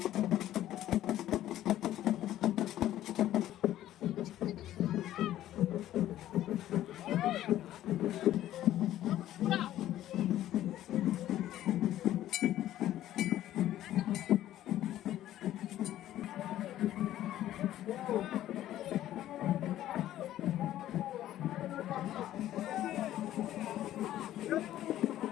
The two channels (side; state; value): right; quieter; 13.1 dB